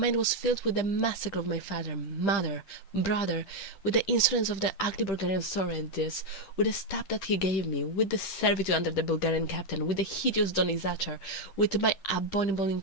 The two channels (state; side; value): late; right; 10 ms